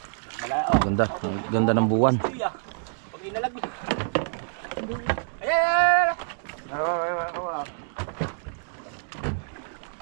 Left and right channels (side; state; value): left; silent; digital silence